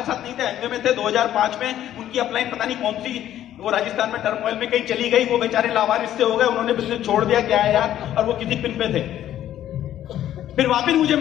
नहीं थे, एमवे में थे। 2005 में उनकी अपलाइन पता नहीं कौन सी, वो राजस्थान में टर्मोइल में कहीं चली गई, वो बेचारे लावारिस से हो गए, उन्होंने बिजनेस छोड़ दिया, क्या है यार, और वो किसी पिन पे थे। फिर वापिस मुझे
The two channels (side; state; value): right; quieter; 11.9 dB